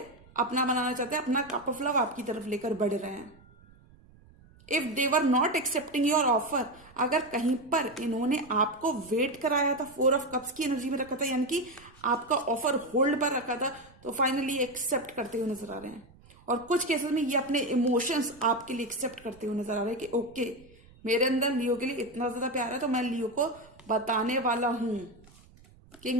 अपना बनाना चाहते हैं, अपना कप ऑफ लव आपकी तरफ लेकर बढ़ रहे हैं। If they were not accepting your offer, अगर कहीं पर इन्होंने आपको वेट कराया था, 4 ऑफ कप्स की एनर्जी में रखा था, यानी कि आपका ऑफर होल्ड पर रखा था, तो फाइनली एक्सेप्ट करते हुए नजर आ रहे हैं। और कुछ केसेस में ये अपने इमोशंस आपके लिए एक्सेप्ट करते हुए नजर आ रहे हैं कि ओके, मेरे अंदर लियो के लिए इतना ज्यादा प्यार है, तो मैं लियो को बताने वाला हूं।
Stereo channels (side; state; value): right; noise; rumble, 26 dB below the sound